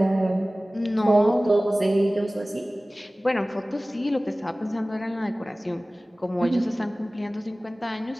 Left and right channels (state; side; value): normal; both; correlation 0.98